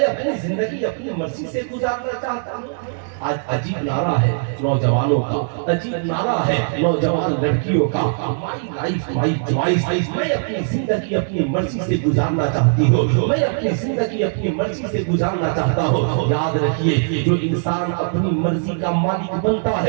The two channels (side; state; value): left; silent; digital silence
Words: अपनी जिंदगी अपनी मर्जी से गुजारना चाहता हूँ। आज अजीब नारा है नौजवानों का, अजीब नारा है नौजवान लड़कियों का, माई लाइफ माई चॉइस, मैं अपनी जिंदगी अपनी मर्जी से गुजारना चाहती हूँ, मैं अपनी जिंदगी अपनी मर्जी से गुजारना चाहता हूँ। याद रखिए जो इंसान अपनी मर्जी का मालिक बनता